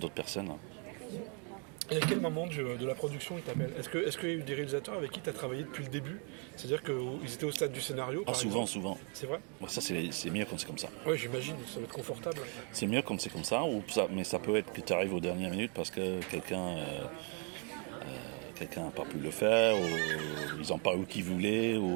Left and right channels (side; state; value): left; quieter; 37.2 dB